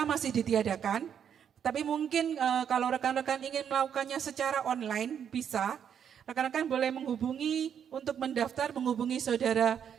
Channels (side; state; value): left; quieter; 8.4 dB